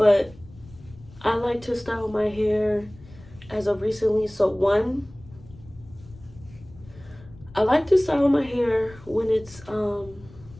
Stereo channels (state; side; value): noise; left; rumble, 21 dB below the sound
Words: I like to style my hair as of recently. So one, I like to style my hair when it's, how